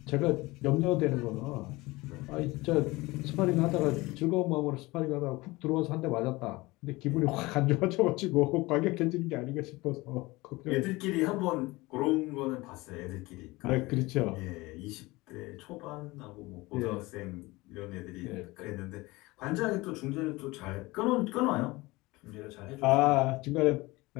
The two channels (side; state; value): right; quieter; 21.6 dB